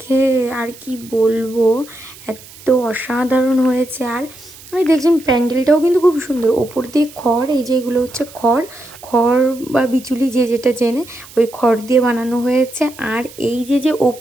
আর কি বলবো, এত অসাধারণ হয়েছে। আর আমি দেখছেন প্যান্ডেলটাও কিন্তু খুব সুন্দর, ওপর দিয়ে খড়, এই যে এগুলো হচ্ছে খড়, খড় বা বিচুলি যে যেটা চেনে, ওই খড় দিয়ে বানানো হয়েছে। আর এই যে যে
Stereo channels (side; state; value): right; noise; hiss, 20 dB below the sound